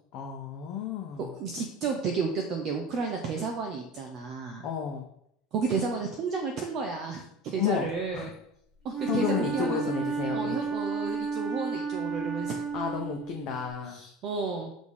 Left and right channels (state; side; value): normal; both; correlation 0.38